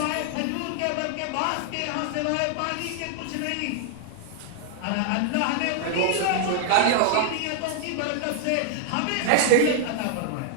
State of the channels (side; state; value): both; different; correlation 0.00